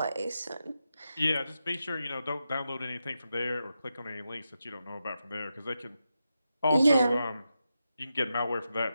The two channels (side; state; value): both; inverted; correlation -0.88